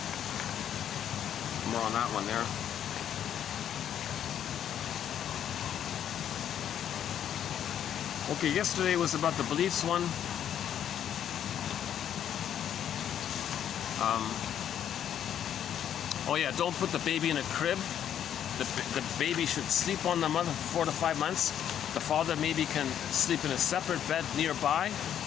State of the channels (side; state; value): right; quieter; 9.8 dB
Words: More on that one there. Okay, yesterday was about the beliefs one. Oh yeah, don't put the baby in a crib. The baby should sleep on the mother for 4 to 5 months. The father maybe can sleep in a separate bed nearby.